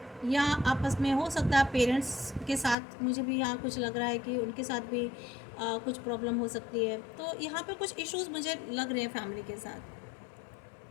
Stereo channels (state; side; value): drops out; right; at 2.8 s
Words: या आपस में हो सकता है पेरेंट्स के साथ, मुझे भी यहाँ कुछ लग रहा है कि उनके साथ भी कुछ प्रॉब्लम हो सकती है। तो यहाँ पे कुछ इश्यूज़ मुझे लग रहे हैं फैमिली के